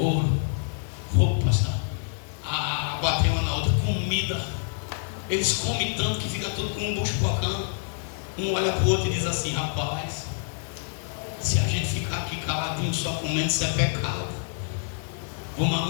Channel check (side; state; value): right; silent; 60 dB below the other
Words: roupas, água tem uma na outra, comida. Eles comem tanto que fica tudo com um bucho bocando. Um olha para o outro e diz assim, rapaz, se a gente ficar aqui caladinho só comendo, isso é pecado. Vamos